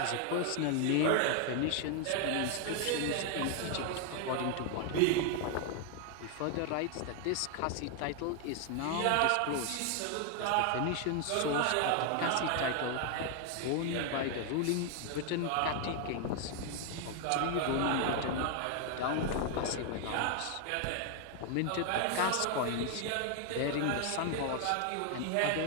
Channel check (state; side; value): different; both; correlation 0.01